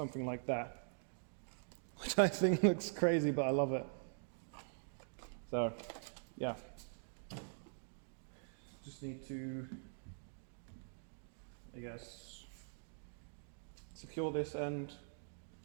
like that, which I think looks crazy, but I love it. So yeah, just need to, I guess, secure this end,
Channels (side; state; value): left; silent; digital silence